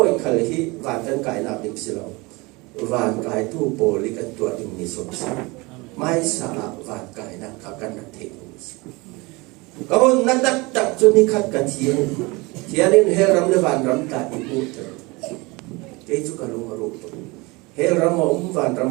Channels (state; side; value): quieter; left; 24.7 dB